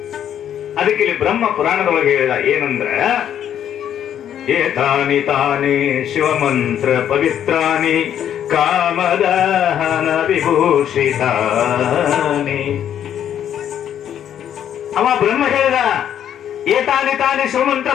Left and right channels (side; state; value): right; quieter; 9.9 dB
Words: ಅದಕ್ಕೆ ಇಲ್ಲಿ ಬ್ರಹ್ಮ ಪುರಾಣದೊಳಗೆ ಹೇಳಿದ ಏನಂದ್ರ, ಏತಾನಿ ತಾನಿ ಶಿವಮಂತ್ರ ಪವಿತ್ರಾನಿ ಕಾಮದಹನ ವಿಭೂಷಿತಾನಿ. ಅವ ಬ್ರಹ್ಮ ಹೇಳಿದ, ಏತಾನಿ ತಾನಿ ಶಿವಮಂತ್ರ